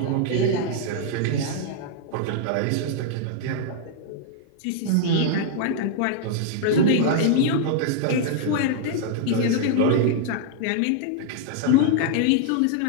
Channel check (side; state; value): both; different; correlation -0.01